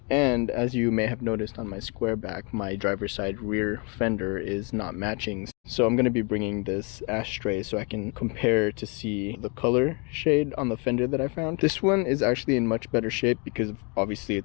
and as you may have noticed on my Squareback, my driver's side rear fender is not matching. So I'm gonna be bringing this ashtray so I can compare to see the color shade on the fender that I found. This one is actually in much better shape because obviously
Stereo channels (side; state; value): right; quieter; 32.8 dB